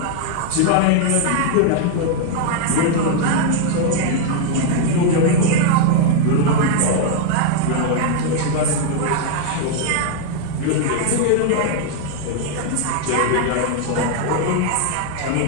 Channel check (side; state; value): both; different; correlation 0.00